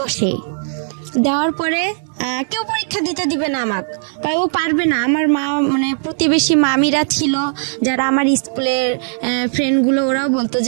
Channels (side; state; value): left; silent; digital silence